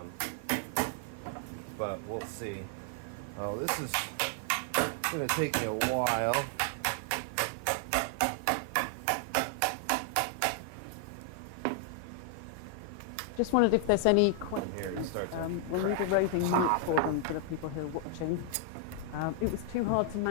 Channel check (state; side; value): different; both; correlation 0.00